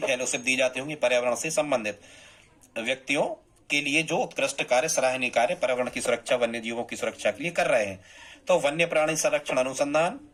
दी जाती होंगी पर्यावरण से संबंधित व्यक्तियों के लिए जो उत्कृष्ट कार्य, सराहनीय कार्य पर्यावरण की सुरक्षा, वन्य जीवों की सुरक्षा के लिए कर रहे हैं। तो वन्य प्राणी संरक्षण अनुसंधान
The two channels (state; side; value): identical; both; correlation 1.00